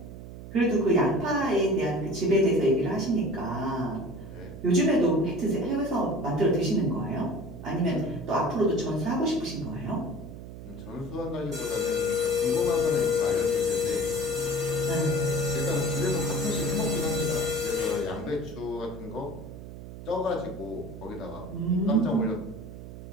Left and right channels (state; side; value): noise; right; hum, 13 dB below the sound